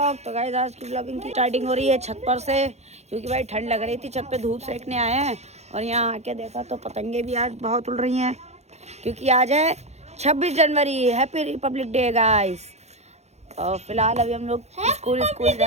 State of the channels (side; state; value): left; late; 0.32 ms